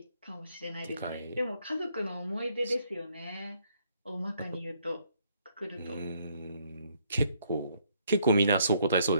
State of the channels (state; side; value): inverted; both; correlation -0.69